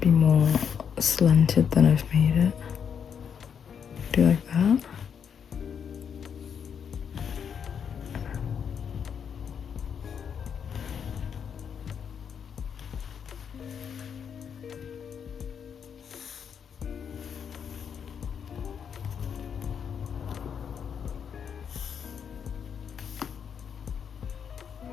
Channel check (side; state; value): right; quieter; 7.4 dB